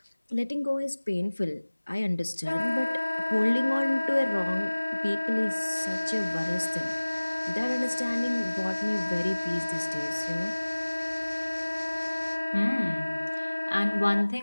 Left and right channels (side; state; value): both; inverted; correlation -1.00